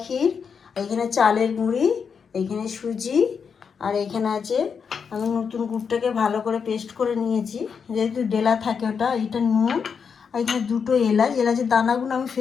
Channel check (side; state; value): right; quieter; 6.3 dB